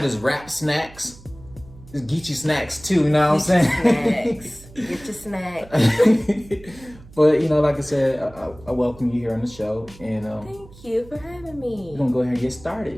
wrap snacks? There's GEECHEE snacks too, you know what I'm saying? Snacks. Get your snacks. But, you know, like I said, I welcome you here on the show. And thank you for having me. We're going to go ahead and get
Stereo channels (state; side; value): noise; right; hum, 21 dB below the sound